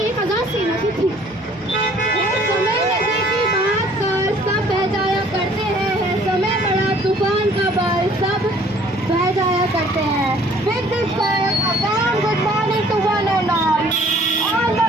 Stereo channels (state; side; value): normal; both; correlation 0.56